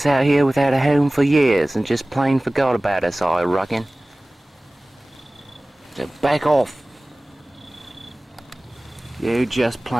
out here without a home for years and just plain forgot about us, I reckon. So back off. You just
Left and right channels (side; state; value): both; normal; correlation 0.98